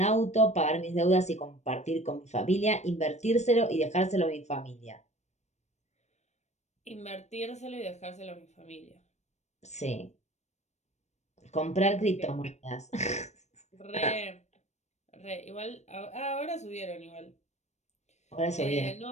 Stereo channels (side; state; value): right; late; 0.33 ms